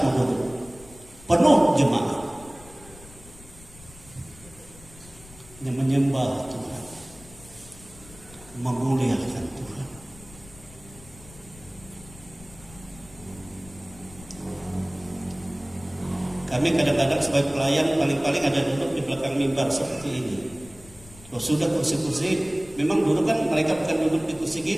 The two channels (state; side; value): noise; left; rumble, 21 dB below the sound